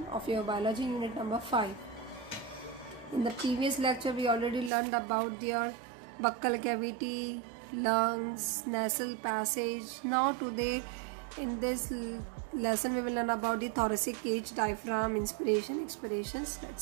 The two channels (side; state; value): left; drops out; at 4.7 s